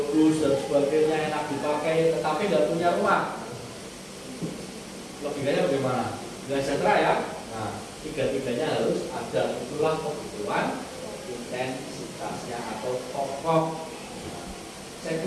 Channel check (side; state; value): both; identical; correlation 1.00